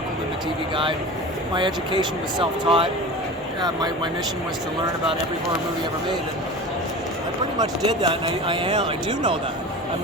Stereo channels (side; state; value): both; normal; correlation 0.33